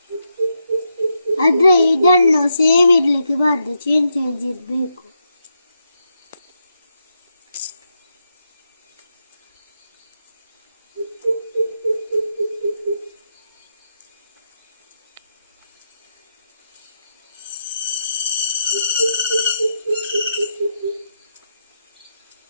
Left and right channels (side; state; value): both; inverted; correlation -0.83